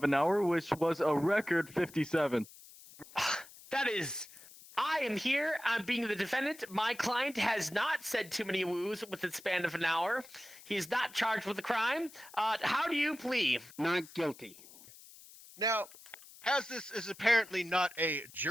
an hour, which was a record 57. That is... I am here. I'm being the defendant. My client has not said too many woos with the span of an hour. He is not charged with a crime. How do you plead? Not guilty. Now, as this is apparently not a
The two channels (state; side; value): noise; left; hiss, 20 dB below the sound